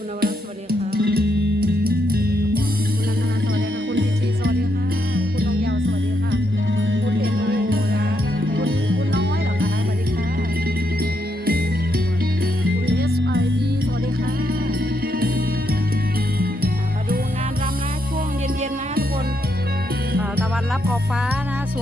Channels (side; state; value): both; normal; correlation 0.78